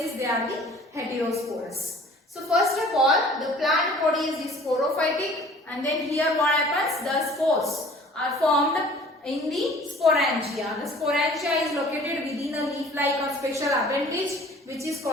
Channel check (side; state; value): both; normal; correlation 0.50